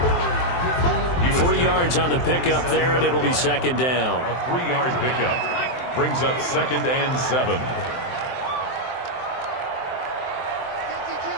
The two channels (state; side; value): late; right; 23 ms